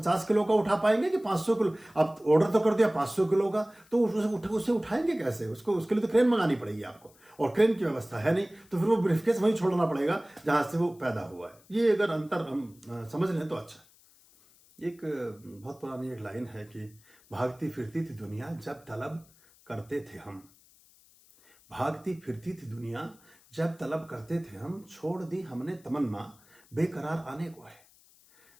किलो का उठा पाएंगे कि 500 किलो? आप ऑर्डर तो कर दिया 500 किलो का, तो उसे उठाएंगे कैसे? उसके लिए तो क्रेन मंगानी पड़ेगी आपको, और क्रेन की व्यवस्था है नहीं, तो फिर वो ब्रीफकेस वहीं छोड़ना पड़ेगा जहां से वो पैदा हुआ है। ये अगर अंतर हम समझ लें तो अच्छा। एक बहुत पुरानी एक लाइन है कि भागती फिरती थी दुनिया जब तलब करते थे हम, भागती फिरती थी दुनिया जब तलब करते थे हम, छोड़ दी हमने तमन्ना बेकरार आने को है।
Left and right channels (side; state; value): left; noise; hiss, 28 dB below the sound